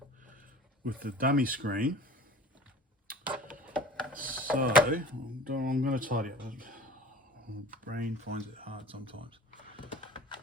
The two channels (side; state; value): both; normal; correlation 0.42